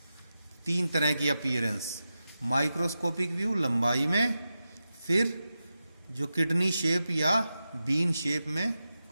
3 तरह की अपीयरेंस, माइक्रोस्कोपिक व्यू लंबाई में, फिर जो किडनी शेप या बीन शेप में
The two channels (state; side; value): inverted; both; correlation -0.91